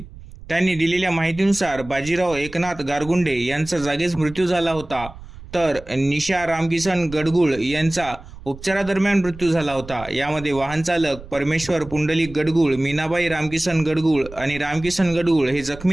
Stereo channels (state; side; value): noise; right; rumble, 16 dB below the sound